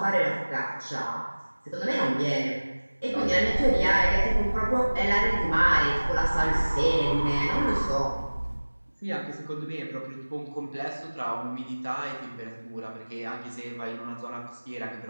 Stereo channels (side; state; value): both; inverted; correlation -1.00